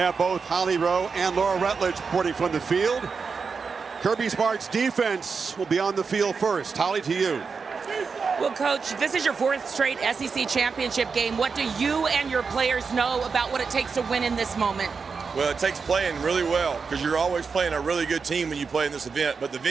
both Holly Rowe and Laura Rutledge reporting from the field. Kirby Smart's defense will be on the field first. Holly, to you. Well, Coach, this is your 4th straight SEC championship game. What do you and your players know about what it takes to win in this moment? Well, it takes playing really well because you're always playing a really good team when you play in this event, but the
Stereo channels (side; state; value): left; quieter; 5.2 dB